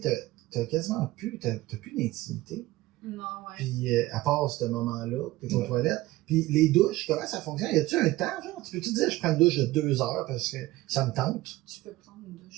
sais, t'as quasiment plus... T'as plus d'intimité. Non, ouais. Puis, à part ce moment-là, t'es aux toilettes. Puis, les douches, comment ça fonctionne? Y a-tu un temps, genre? Tu peux-tu dire, je prends une douche de 2 heures parce que ça me tente? Tu peux prendre une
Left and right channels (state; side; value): quieter; left; 17.9 dB